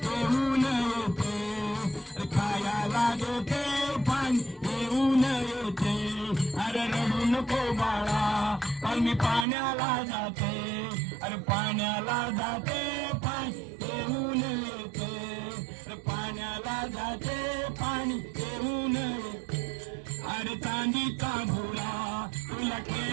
घेऊन येते अरे खायला देते अरे रडू नको बाळा पण मी पाण्याला जाते अरे पाण्याला जाते पाणी घेऊन येते अरे पाण्याला जाते पाणी घेऊन येते अरे चांदीचा भोरा तुला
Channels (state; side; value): drops out; left; at 9.5 s